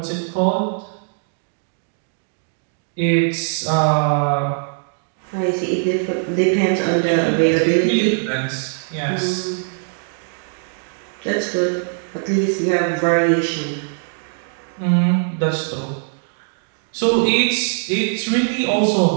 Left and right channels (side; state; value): left; silent; digital silence